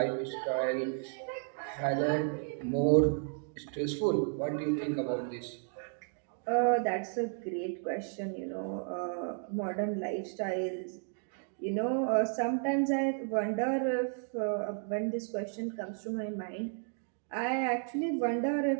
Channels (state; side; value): silent; left; 56 dB below the other